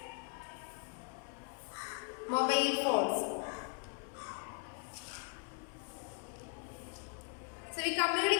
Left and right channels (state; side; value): quieter; right; 38.8 dB